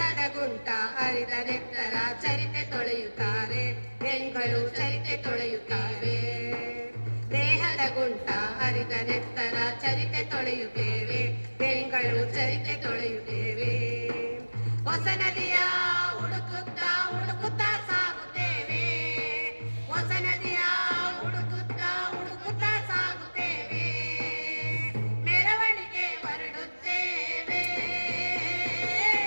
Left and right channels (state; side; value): inverted; both; correlation -1.00